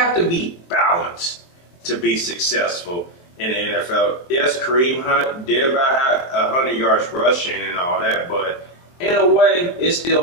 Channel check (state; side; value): late; right; 23 ms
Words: to be balanced to be successful in the NFL. Yes, Kareem Hunt did about 100 yards rushing and all that, but in a way, it still